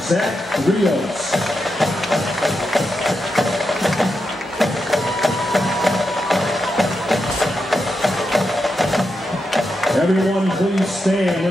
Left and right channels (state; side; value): normal; both; correlation 0.86